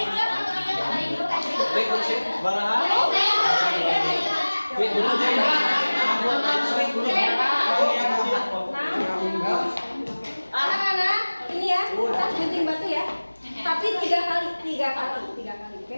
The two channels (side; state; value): both; inverted; correlation -1.00